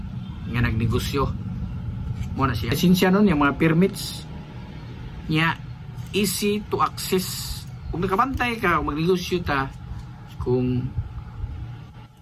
nga nagnegosyo. Mo na siya lisensya nun yung mga permits nya easy to access. Kung nakabantay ka kung magnegosyo ta kung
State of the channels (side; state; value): both; identical; correlation 1.00